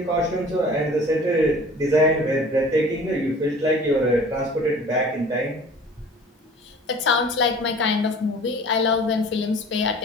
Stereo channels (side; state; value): both; normal; correlation 0.46